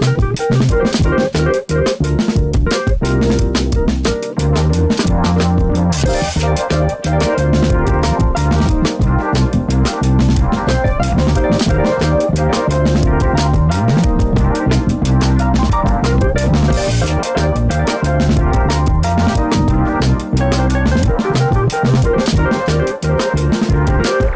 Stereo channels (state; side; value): identical; both; correlation 1.00